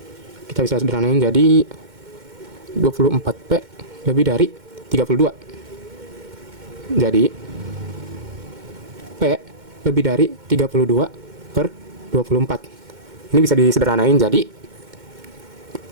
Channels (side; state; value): left; late; 2.1 ms